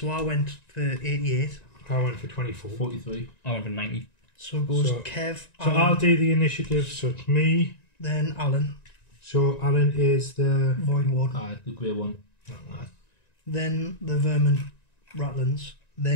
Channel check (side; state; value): right; late; 1.9 ms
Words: I went for 88. I went for 24. 43. I went for 90. So it goes So- Kev, So Alan, I'll do the initiative. So it's me. then Alan, So Alan is the. Void Ward, The grey one. then the vermin Ratlins,